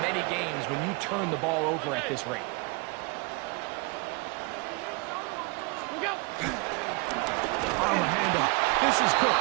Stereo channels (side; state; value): left; quieter; 28.6 dB